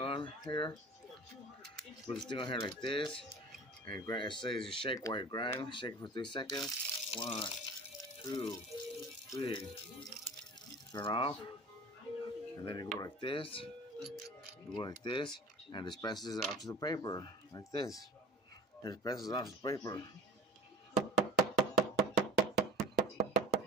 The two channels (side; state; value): both; normal; correlation 0.39